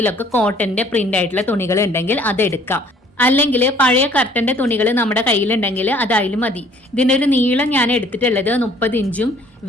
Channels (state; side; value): normal; both; correlation 0.57